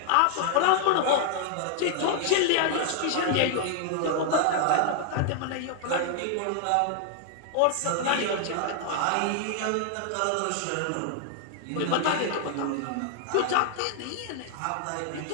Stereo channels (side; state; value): both; different; correlation 0.00